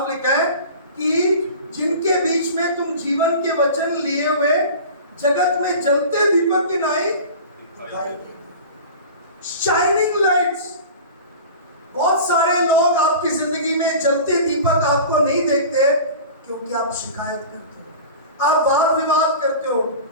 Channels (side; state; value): both; inverted; correlation -0.37